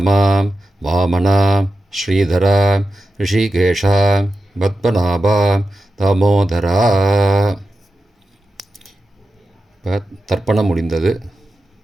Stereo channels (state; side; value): normal; both; correlation 0.91